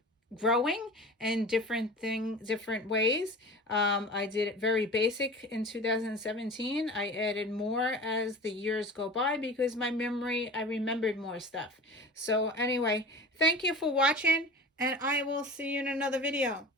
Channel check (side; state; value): both; normal; correlation 0.35